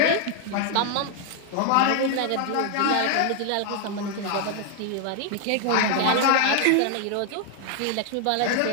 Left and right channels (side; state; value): both; different; correlation 0.00